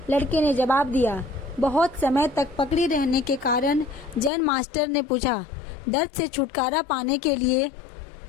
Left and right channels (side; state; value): right; drops out; at 4.3 s